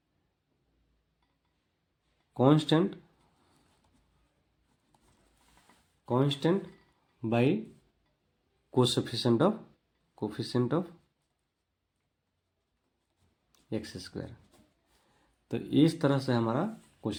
constant by coefficient of x²। तो इस तरह से हमारा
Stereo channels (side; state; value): both; identical; correlation 1.00